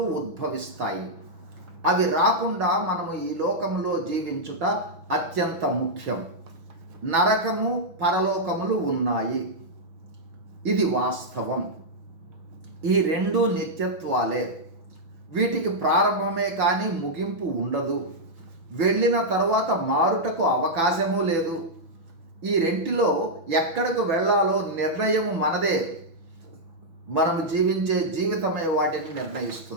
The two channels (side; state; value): left; late; 6.1 ms